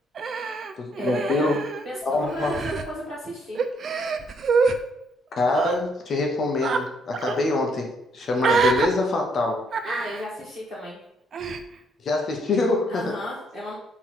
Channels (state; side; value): normal; both; correlation 0.70